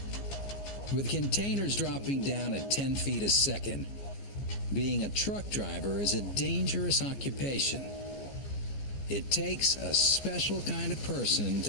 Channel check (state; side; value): late; right; 14 ms